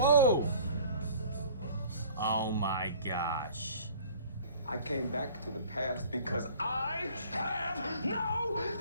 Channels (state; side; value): inverted; both; correlation -0.50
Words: Oh my gosh. I came back to the past because I have no